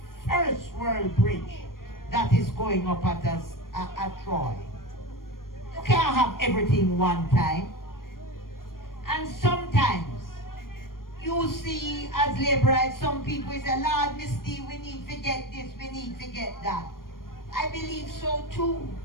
first world bridge that is going up at Troy. You can't have everything one time. And sometimes you see as Labourites, some people say, Lord, Miss D, we need to get this, we need to get that. I believe so too.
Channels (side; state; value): right; late; 0.91 ms